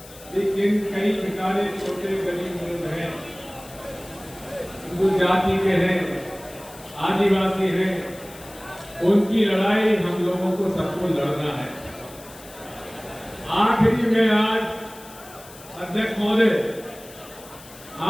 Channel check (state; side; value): noise; left; hiss, 19 dB below the sound